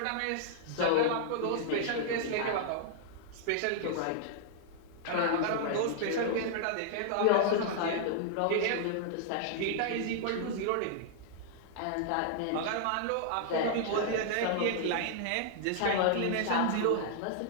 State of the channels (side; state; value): both; different; correlation -0.01